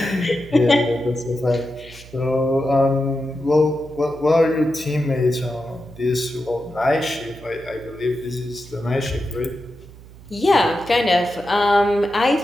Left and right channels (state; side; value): noise; right; hum, 20 dB below the sound